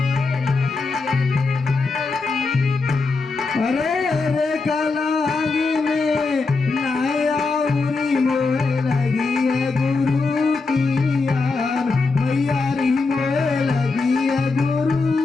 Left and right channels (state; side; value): quieter; right; 4.0 dB